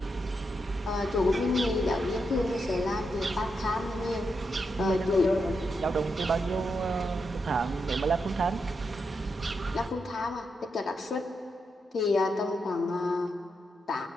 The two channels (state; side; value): normal; both; correlation 0.84